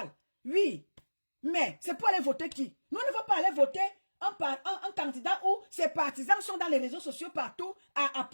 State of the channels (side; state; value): both; inverted; correlation -1.00